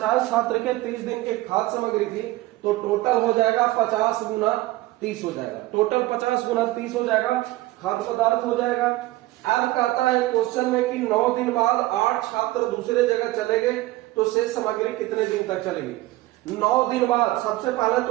छात्र के 30 दिन के खाद्य सामग्री थी तो टोटल हो जाएगा 50 गुना 30 हो जाएगा, टोटल 50 गुना 30 हो जाएगा, खाद्य पदार्थ हो जाएगा। अब कहता है क्वेश्चन में कि 9 दिन बाद 8 छात्र दूसरे जगह चले गए तो शेष सामग्री कितने दिन तक चलेगी। 9 दिन बाद, सबसे पहले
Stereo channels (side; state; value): left; quieter; 18.0 dB